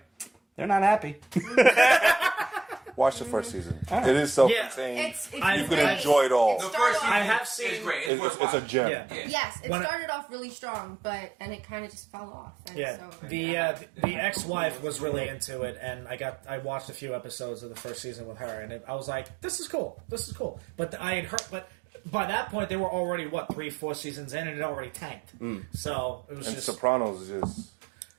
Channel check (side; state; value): left; drops out; at 8.1 s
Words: they're not happy. Watch the first season. Right. It is self-contained. It's you can enjoy it all. The first season I have seen. is great. It's a gem. Yeah. Yes, it started off really strong, and it kind of just fell off. And so, the ex-wife was really into it, and I watched a few episodes of the first season with her, and I was like, this is cool. But I had heard, but by that point they were already 3-4 seasons in, and it already tanked. So it was just Sopranos is just.